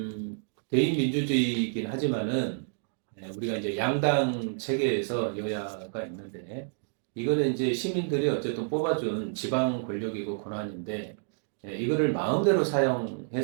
대의 민주주의이긴 하지만은 우리가 이제 양당 체계에서 여야가 있는데 이거는 이제 시민들이 어쨌든 뽑아준 지방 권력이고 권한인데 이거를 마음대로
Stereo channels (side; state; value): left; silent; digital silence